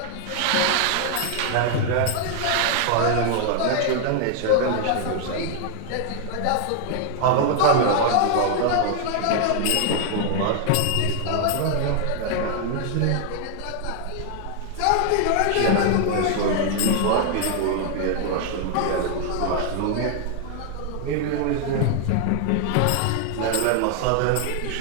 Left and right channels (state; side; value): different; both; correlation 0.00